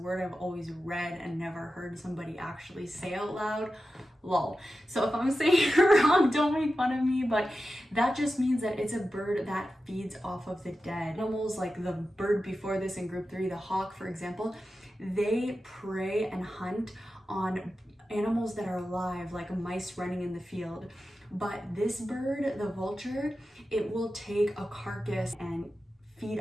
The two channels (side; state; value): both; normal; correlation 0.92